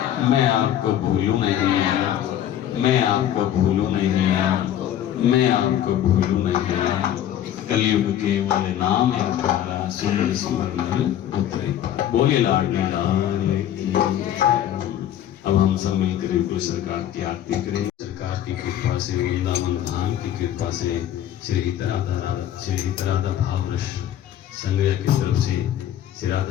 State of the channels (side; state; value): right; quieter; 11.2 dB